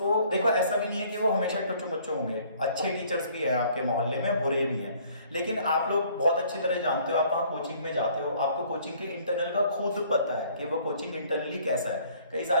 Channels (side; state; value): both; inverted; correlation -0.58